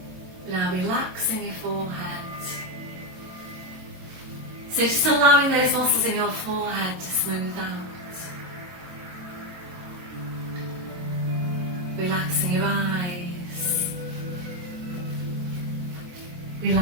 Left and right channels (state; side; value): late; left; 22 ms